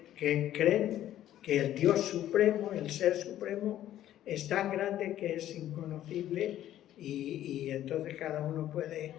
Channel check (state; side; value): quieter; right; 12.5 dB